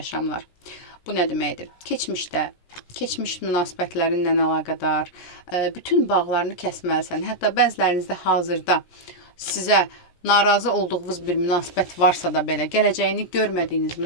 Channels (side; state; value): right; late; 17 ms